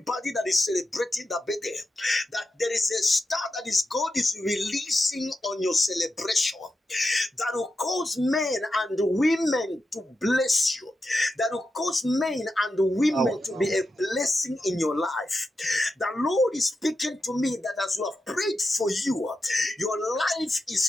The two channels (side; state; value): both; normal; correlation 0.89